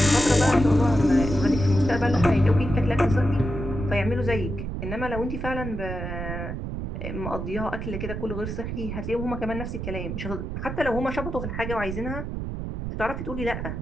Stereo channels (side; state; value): right; noise; rumble, 5 dB below the sound